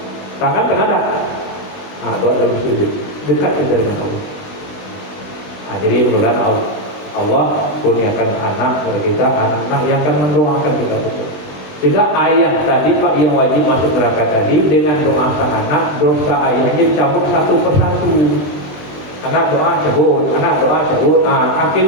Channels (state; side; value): late; right; 20 ms